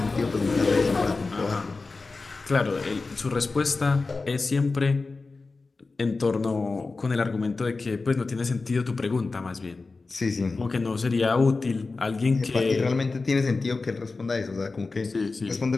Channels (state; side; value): quieter; right; 3.8 dB